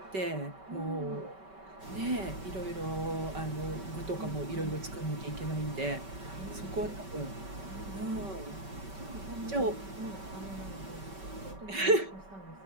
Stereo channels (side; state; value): left; late; 5.2 ms